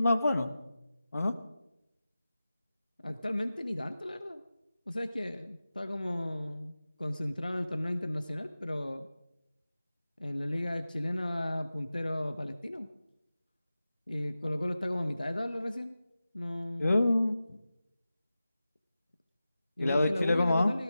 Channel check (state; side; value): inverted; both; correlation -0.94